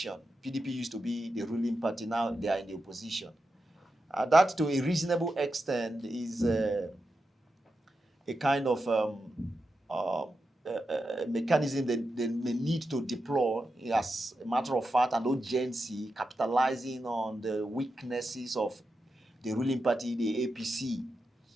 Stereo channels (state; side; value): normal; both; correlation 0.89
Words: PDP used to be the ruling party, now they are in the opposition. That to a reasonable extent is a kind of mechanism that they may need to deploy as a matter of fact and urgency, capitalizing on the weaknesses of the ruling party, the APC,